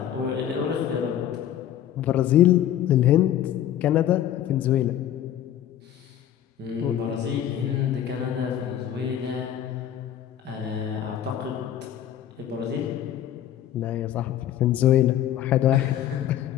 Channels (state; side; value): quieter; right; 11.1 dB